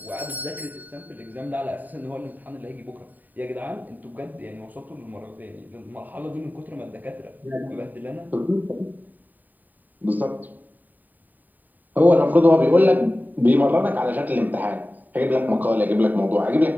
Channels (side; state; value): left; late; 0.086 ms